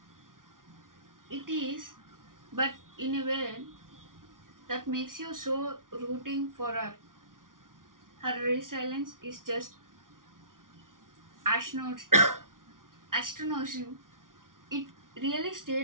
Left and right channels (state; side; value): late; left; 0.89 ms